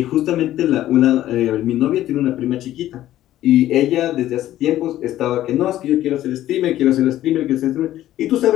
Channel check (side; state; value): right; quieter; 13.5 dB